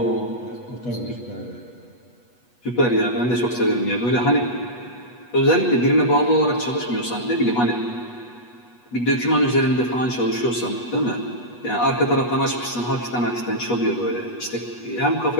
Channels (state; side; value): late; right; 8.2 ms